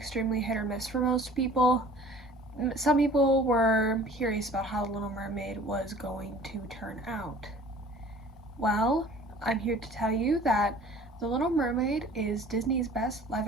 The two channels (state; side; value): normal; both; correlation 0.48